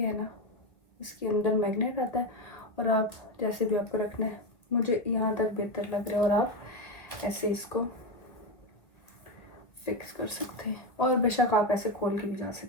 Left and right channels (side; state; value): right; late; 1.9 ms